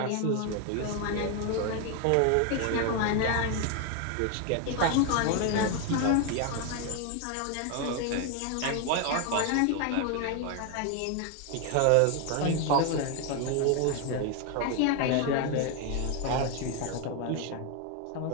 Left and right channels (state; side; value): different; both; correlation 0.01